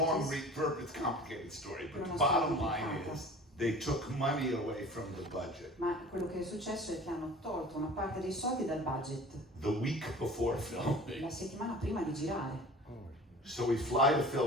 it's a complicated story, but the Una bottom storia line complicata. is they took money away from the budget. Ma quello che è successo è che hanno tolto una parte dei soldi dal budget The week before filming. la settimana prima di girare. So we fly to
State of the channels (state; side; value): normal; both; correlation 0.43